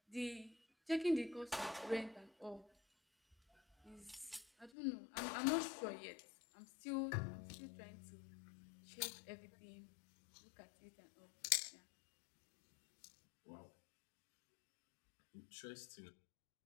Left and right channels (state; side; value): drops out; right; at 4.7 s